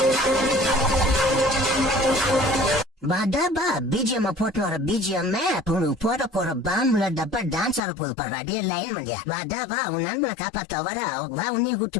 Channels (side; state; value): right; drops out; at 7.8 s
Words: டப்பா பிஜிஎம் போட்டு வர பிஜிஎம் போற பாம்புல டப்பா டான்ஸ் ஆட போது பாரு. டே லைன் பண்ணியா டப்பா உன் நண்பனை காப்பாத்த வர வா உன்னையும்